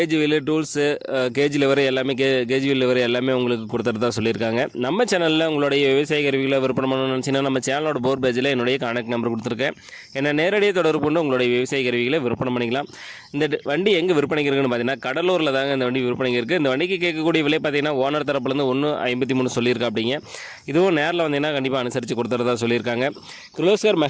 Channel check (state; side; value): identical; both; correlation 1.00